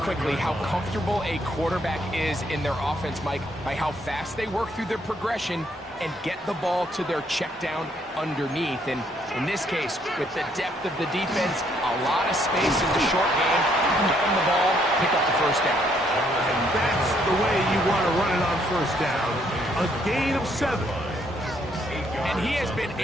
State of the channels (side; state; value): both; normal; correlation 0.70